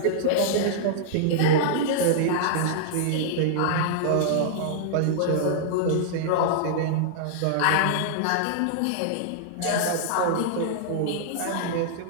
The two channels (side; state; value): both; different; correlation -0.01